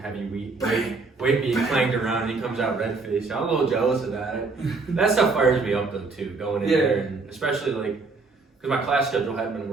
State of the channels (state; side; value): quieter; left; 4.0 dB